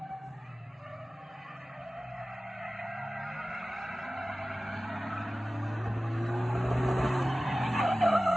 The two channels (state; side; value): normal; both; correlation 0.97